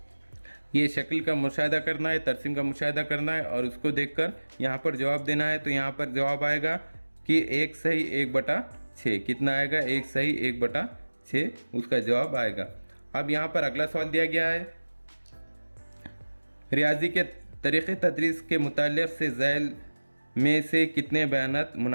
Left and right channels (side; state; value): both; inverted; correlation -1.00